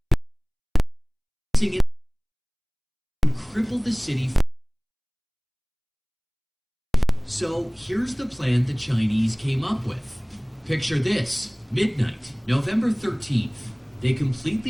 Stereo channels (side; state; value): both; identical; correlation 1.00